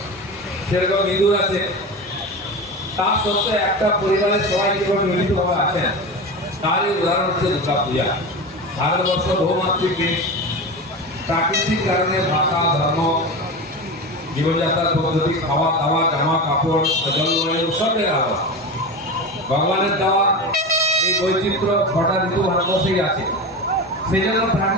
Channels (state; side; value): normal; both; correlation 0.25